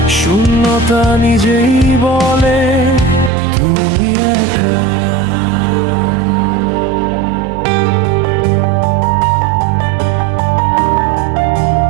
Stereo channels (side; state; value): left; drops out; at 3.3 s